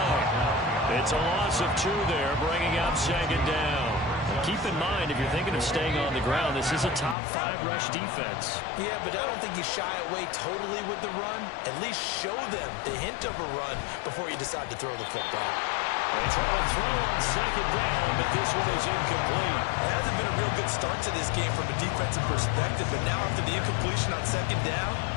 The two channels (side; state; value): right; drops out; at 7.2 s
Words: It's a loss of 2 there, bringing up 2nd down. Keep in mind, if you're thinking of staying on the ground, this is a top 5 rush defense. Yeah, but I don't think you shy away totally with the run. At least show them the hint of a run before you decide to throw the football. They try to throw on 2nd down, but this one is incomplete. It hasn't been a real good start to this game from a defensive perspective, but now after the incompletion on 2nd down,